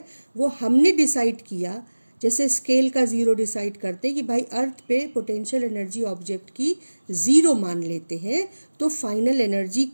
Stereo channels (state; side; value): inverted; both; correlation -1.00